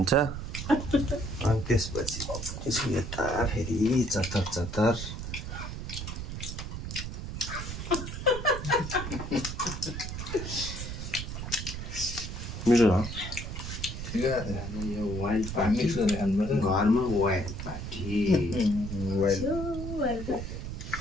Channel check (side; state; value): right; noise; rumble, 6 dB below the sound